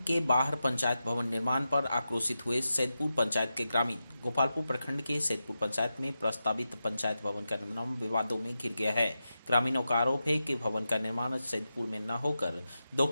के बाहर पंचायत भवन निर्माण पर आक्रोशित हुए सैदपुर पंचायत के ग्रामीण। गोपालपुर प्रखंड के सैदपुर पंचायत में प्रस्तावित पंचायत भवन का निर्माण विवादों में घिर गया है। ग्रामीणों का आरोप है कि भवन का निर्माण सैदपुर में न होकर 2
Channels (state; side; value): inverted; both; correlation -0.90